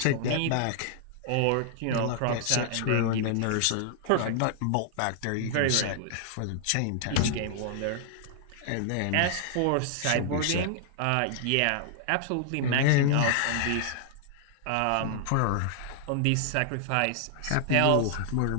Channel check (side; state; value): both; different; correlation -0.01